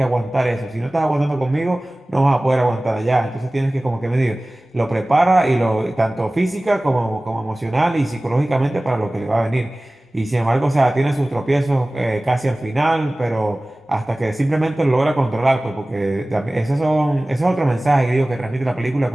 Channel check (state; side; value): normal; both; correlation 0.98